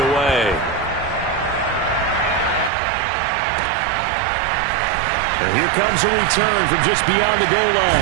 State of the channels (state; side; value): drops out; left; at 2.7 s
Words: away. And here comes a return from just beyond the goal